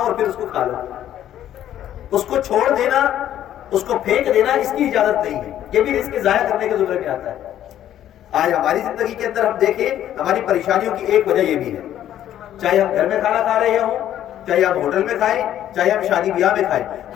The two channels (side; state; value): right; quieter; 11.5 dB